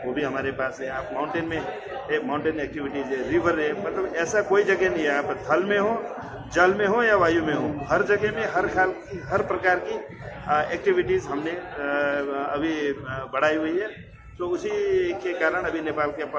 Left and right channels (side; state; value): both; identical; correlation 1.00